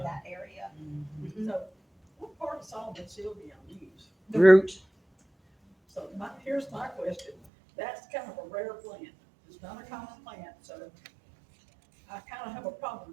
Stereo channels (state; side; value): drops out; left; at 7.4 s